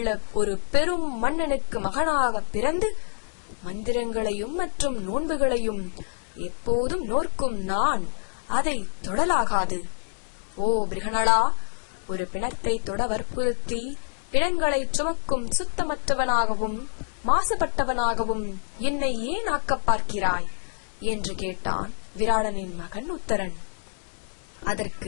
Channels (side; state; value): right; silent; 60 dB below the other